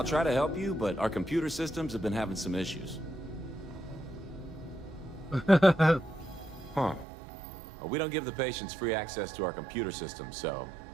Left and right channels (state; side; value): drops out; left; at 7.1 s